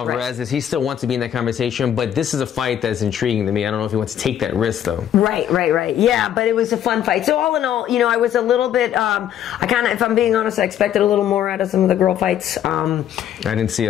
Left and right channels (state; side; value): quieter; right; 10.4 dB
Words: He still wants to be in that conversation, but this is a fight that's intriguing to me. I don't know if he wants to take that risk though. Right. Yeah, but it was a fun fight. So all in all, you know, I was a little bit. If I'm being honest, I expected a little more out of some of the girl fights. I didn't see